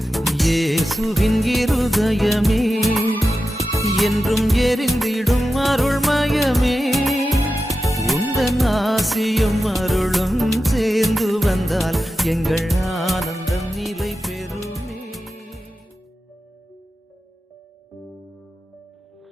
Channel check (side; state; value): both; normal; correlation 0.92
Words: இயேசுவின் இருதயமே என்றும் எரிந்திடும் அருள்மயமே, உந்தன் ஆசியும் அருளும் சேர்ந்து வந்தால் எங்கள் ஆனந்தம் நிலை பெறுமே.